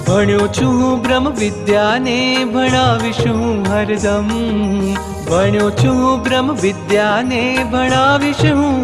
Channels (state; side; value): identical; both; correlation 1.00